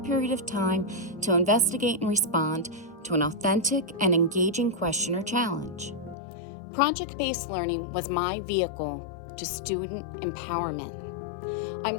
period of time to investigate and respond to an authentic and engaging question or challenge. Project-based learning was my vehicle to student empowerment. I'm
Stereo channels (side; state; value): right; drops out; at 6.2 s